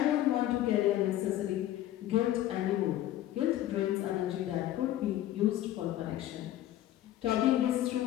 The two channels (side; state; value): right; quieter; 13.5 dB